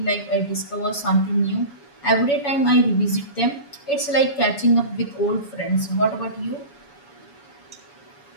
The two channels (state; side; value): late; right; 7.1 ms